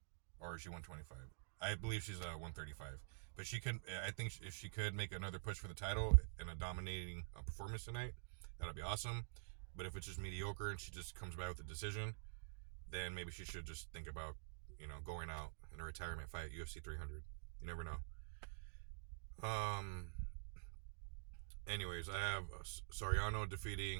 or is she 125? I believe she's 135, but she could. I think if she could make another push for the title and a dominating performance tonight, that'll be awesome. But if it's just mediocre and she just comes by with a decision, then maybe she should just think about going out in a retirement fight at UFC 300. You never know. Um. Anyways, I have Soriano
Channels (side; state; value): left; silent; digital silence